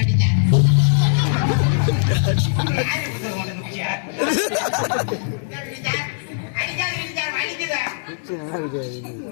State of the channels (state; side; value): silent; right; digital silence